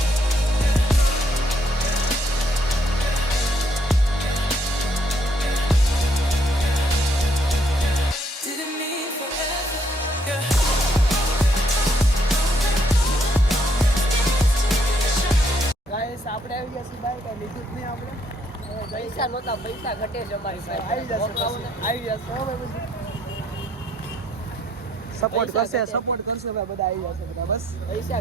આપણે આવી ગયા છીએ બાય. કઈ લીધું જ નહીં આપણે. પૈસા નહોતા, પૈસા ઘટે છે અમારી પાસે. આવી જશે ભાઈ. સપોર્ટ કરશે ભાઈ. બધા આવી જશે બધા. બસ પૈસા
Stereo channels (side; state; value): both; normal; correlation 0.71